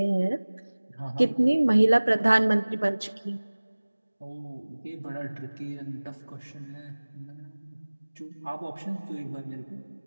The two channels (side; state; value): both; inverted; correlation -1.00